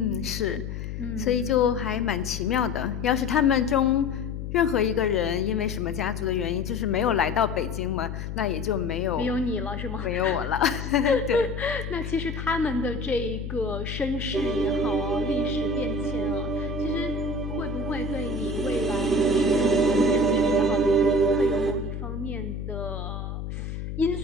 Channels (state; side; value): noise; left; hum, 6 dB below the sound